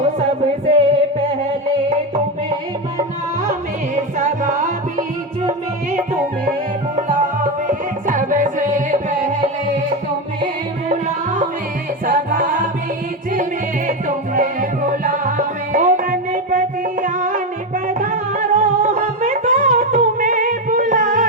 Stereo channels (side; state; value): both; normal; correlation 0.13